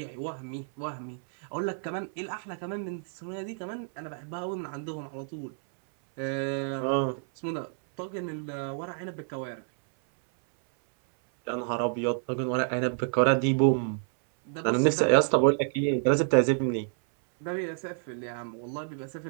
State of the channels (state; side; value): silent; left; 58 dB below the other